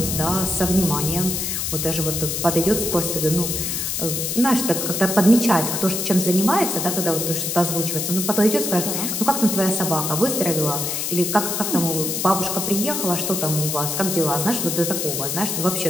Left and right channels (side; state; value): left; noise; hiss, 1 dB below the sound